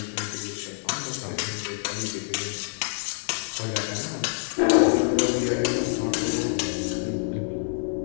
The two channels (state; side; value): silent; right; digital silence